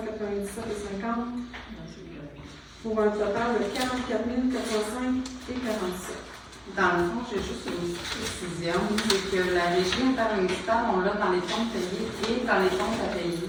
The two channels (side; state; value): both; identical; correlation 1.00